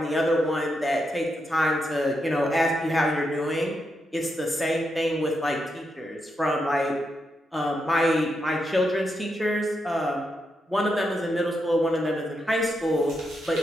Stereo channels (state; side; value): normal; both; correlation 0.83